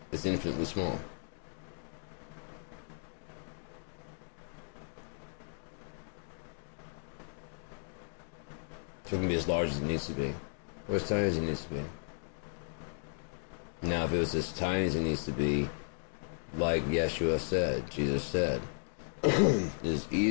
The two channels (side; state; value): right; silent; digital silence